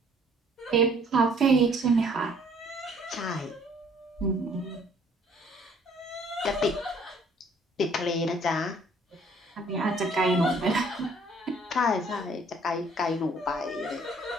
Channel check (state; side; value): normal; both; correlation 0.59